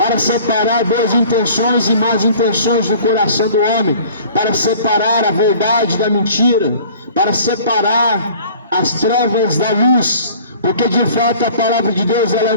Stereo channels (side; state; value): both; inverted; correlation -0.48